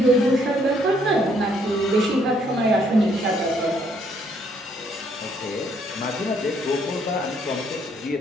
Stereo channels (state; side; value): normal; both; correlation 0.68